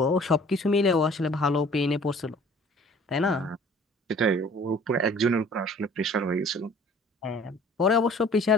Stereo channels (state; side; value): normal; both; correlation 0.51